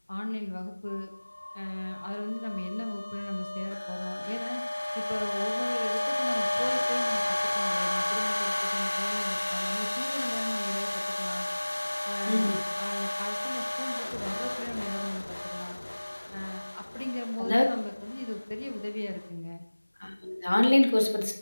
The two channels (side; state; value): both; inverted; correlation -1.00